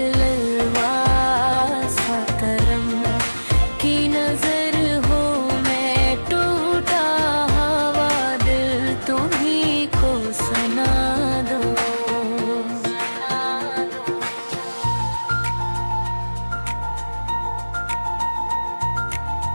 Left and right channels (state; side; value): inverted; both; correlation -1.00